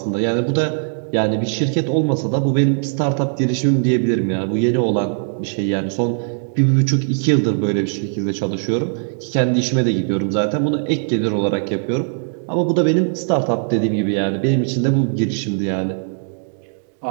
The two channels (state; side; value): silent; left; digital silence